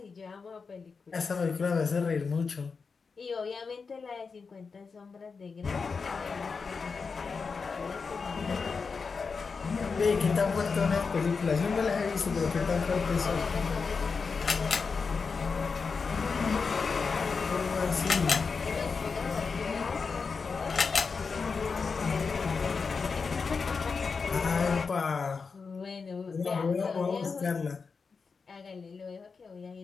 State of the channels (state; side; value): quieter; right; 5.0 dB